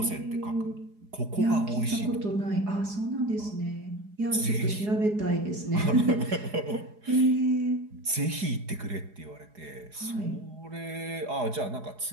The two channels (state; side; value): late; left; 4.8 ms